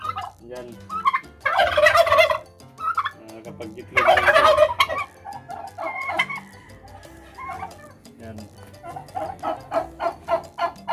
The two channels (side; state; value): both; identical; correlation 1.00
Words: Yan. Kapag gitlog na ito. Yan.